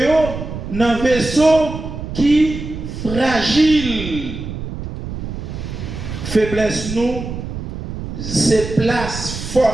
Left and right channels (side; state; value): right; noise; rumble, 7 dB below the sound